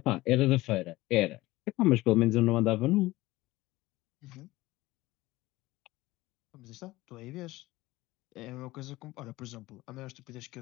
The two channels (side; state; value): right; quieter; 18.8 dB